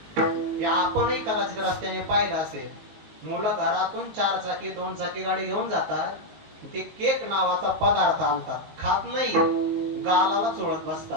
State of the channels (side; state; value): left; late; 19 ms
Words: हे आपणही कदाचित रस्त्याने पाहिलं असेल. मुलं घरातून 4 चाकी 2 चाकी गाडी घेऊन जातात, ते केक नावाचा पदार्थ आणतात, खात नाही, गालाला चोळत